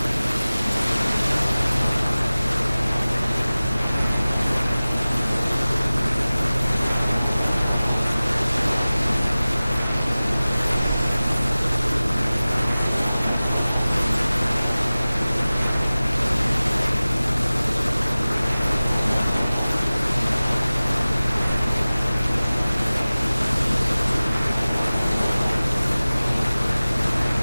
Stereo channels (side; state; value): both; inverted; correlation -0.98